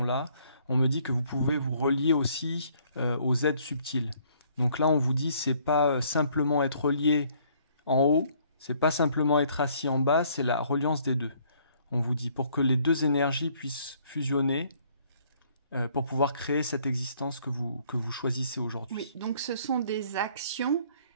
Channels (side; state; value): both; inverted; correlation -0.62